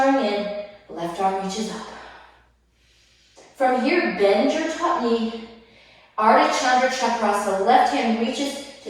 in. Left arm reaches up. From here, bend your top knee. Ardha Chandra Chakrasana, left hand reaches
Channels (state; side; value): identical; both; correlation 1.00